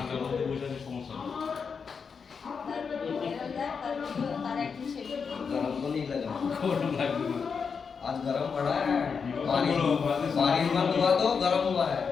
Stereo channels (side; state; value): right; quieter; 5.8 dB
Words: মধ্যে বসাতে সমস্যা নেই। তার একটু শেভিং गरम तो नहीं लगा গরম লাগবে না। आज गरम पड़ा है बारिश बारिश बंद हुआ तो गरम हुआ है